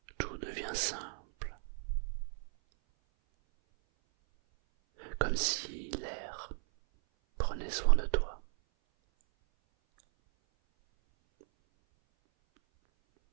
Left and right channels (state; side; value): silent; left; 54 dB below the other